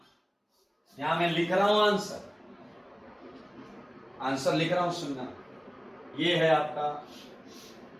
यहां मैं लिख रहा हूं आंसर, आंसर लिख रहा हूं, सुनना, ये है आपका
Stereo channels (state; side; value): identical; both; correlation 1.00